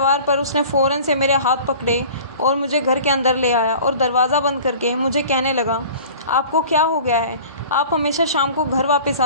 पर उसने फ़ौरन से मेरे हाथ पकड़े और मुझे घर के अंदर ले आया और दरवाज़ा बंद करके मुझे कहने लगा, आपको क्या हो गया है? आप हमेशा शाम को घर वापस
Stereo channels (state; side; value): inverted; both; correlation -0.43